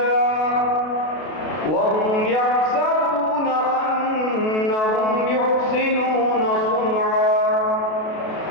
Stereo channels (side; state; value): right; late; 32 ms